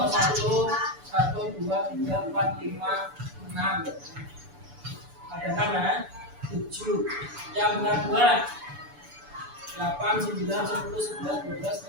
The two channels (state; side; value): late; left; 6.9 ms